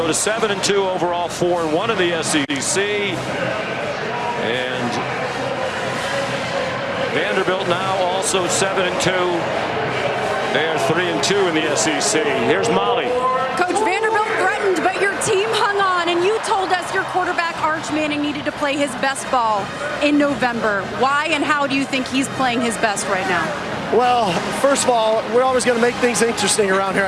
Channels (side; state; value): both; identical; correlation 1.00